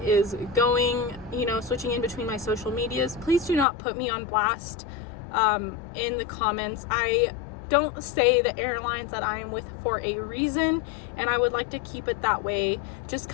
is going, switching in between my social medias, please do not put me on blast in the comments. I don't say the airlines that I am with for a reason, and I would like to keep it that way. Just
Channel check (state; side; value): drops out; right; at 3.7 s